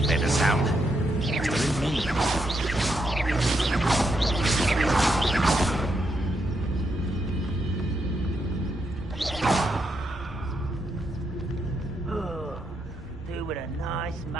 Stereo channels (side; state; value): both; normal; correlation 0.80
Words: made a sound. It was me. Do with a nice